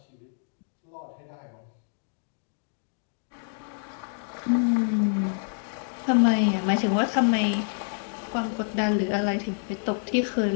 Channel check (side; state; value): right; silent; digital silence